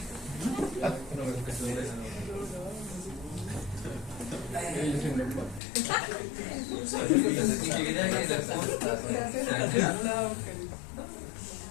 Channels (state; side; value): drops out; right; at 5.6 s